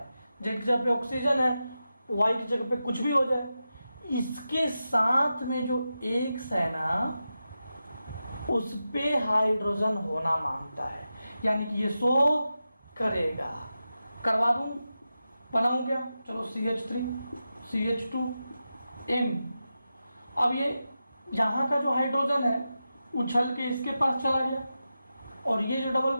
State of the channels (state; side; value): inverted; both; correlation -0.91